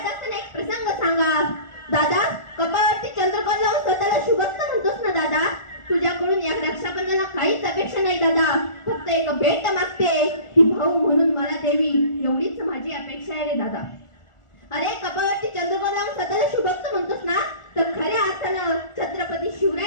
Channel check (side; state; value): right; late; 1.4 ms